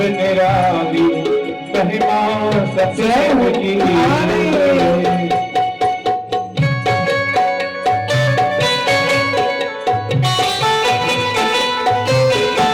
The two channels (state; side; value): identical; both; correlation 1.00